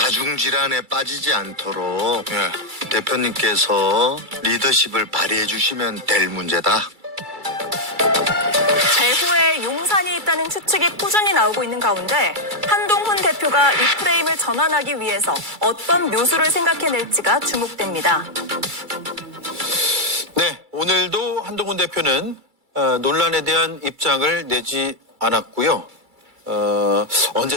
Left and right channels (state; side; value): late; left; 2.3 ms